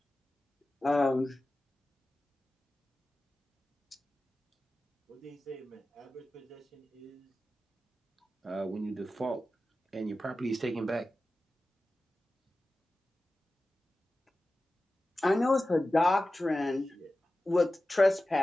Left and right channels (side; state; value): both; normal; correlation 0.95